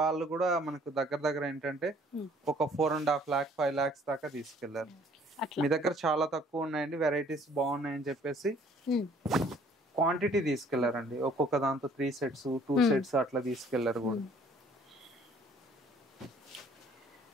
కూడా మనకు దగ్గర ఏంటంటే ఒక 4.5 lakh 5 lakhs దాకా తీసుకెళ్లారు. మీ దగ్గర చాలా తక్కువ ఉన్నాయండి, వెరైటీస్ బాగున్నాయని చెప్పేసి క్వాంటిటీ తీసుకెళ్లారండి. ఒక్కొక్క దాంతో 3 sets 2 sets అట్లా తీసుకెళ్లారు కూడా.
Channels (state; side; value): normal; both; correlation 0.58